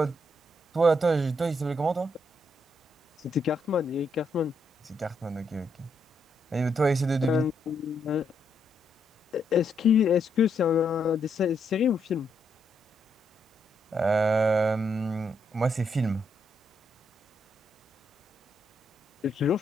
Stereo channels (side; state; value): both; normal; correlation 0.77